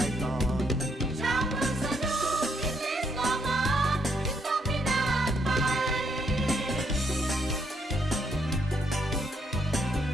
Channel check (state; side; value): normal; both; correlation 0.73